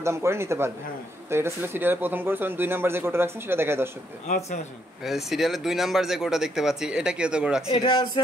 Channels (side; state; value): both; normal; correlation 0.74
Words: করে নিতে পারবে। তো এটা ছিল সিরিয়ালের প্রথম গরু। 2 নাম্বার যে গরুটা রাখছেন সেটা দেখায় দর্শকদের। আচ্ছা আচ্ছা, সিরিয়ালের 2 নাম্বার যে গরুটা দেখতে পাচ্ছি এটা কি তো গরু রাখছেন? এটা আছে